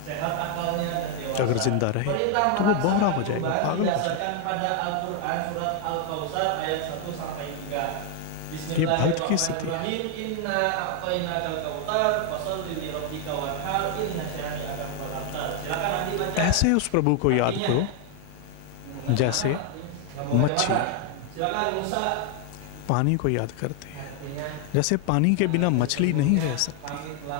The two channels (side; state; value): both; different; correlation 0.00